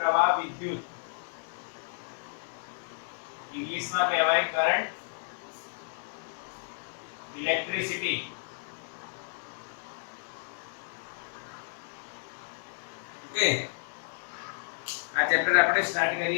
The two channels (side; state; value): right; silent; digital silence